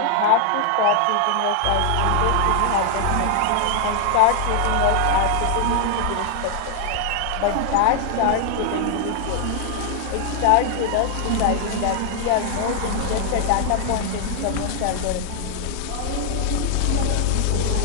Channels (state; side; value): different; both; correlation 0.00